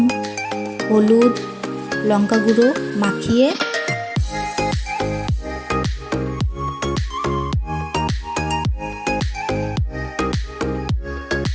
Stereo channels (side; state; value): both; identical; correlation 1.00